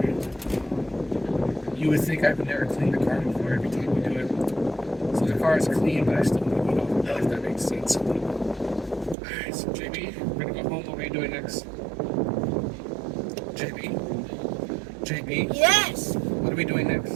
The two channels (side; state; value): left; drops out; at 9.2 s